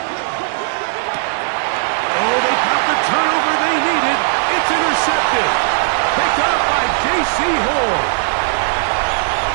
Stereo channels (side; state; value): left; silent; digital silence